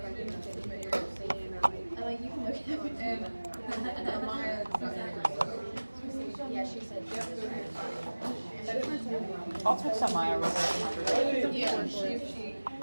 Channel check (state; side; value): inverted; both; correlation -1.00